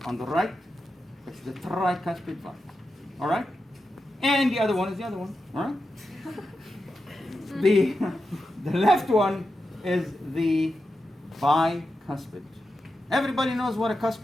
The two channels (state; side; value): normal; both; correlation 0.89